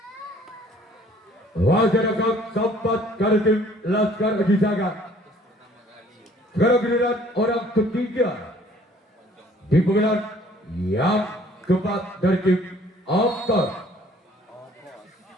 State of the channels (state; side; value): normal; both; correlation 0.57